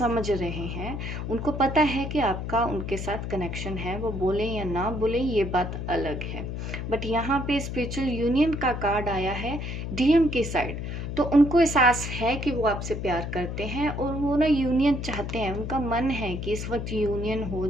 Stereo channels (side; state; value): left; noise; hum, 5 dB below the sound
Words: रहे हैं, उनको पता है कि आपका उनके साथ कनेक्शन है, वो बोले या ना बोले ये बात अलग है। बट यहाँ पे स्पिरिचुअल यूनियन का कार्ड आया है डीएम की साइड, तो उनको एहसास है कि वो आपसे प्यार करते हैं और वो ना यूनियन चाहते हैं, उनका मन है कि इस वक्त यूनियन हो